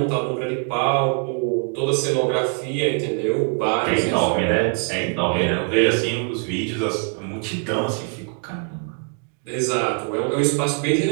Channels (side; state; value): left; quieter; 39.0 dB